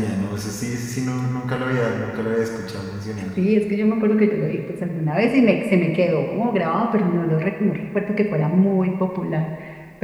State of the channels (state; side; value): identical; both; correlation 1.00